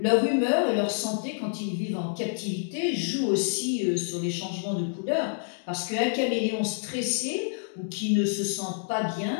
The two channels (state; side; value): silent; right; digital silence